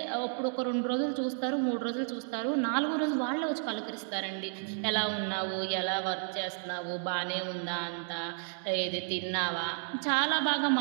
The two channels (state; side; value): silent; left; digital silence